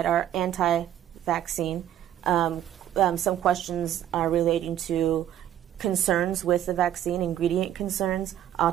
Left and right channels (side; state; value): left; quieter; 11.2 dB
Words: are anti-vaccine. Some questions are relating to concerns with the vaccine, ingredient concerns,